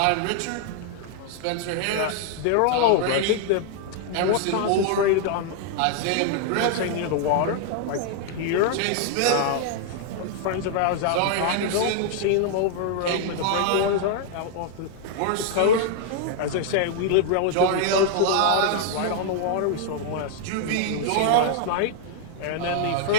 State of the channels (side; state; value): both; different; correlation 0.00